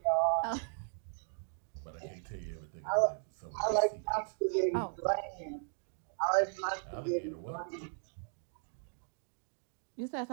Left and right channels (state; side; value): silent; left; digital silence